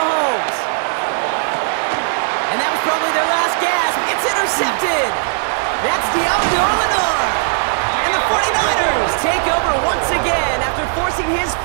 And that was probably their last gasp. It's intercepted. That's Diablo. And the 49ers take over once again after forcing his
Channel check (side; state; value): left; silent; 64 dB below the other